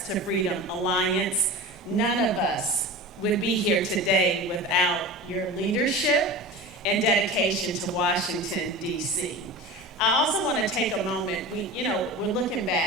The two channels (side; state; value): both; normal; correlation 0.32